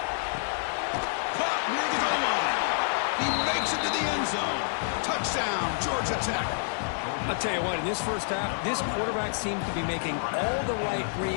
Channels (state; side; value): silent; right; 59 dB below the other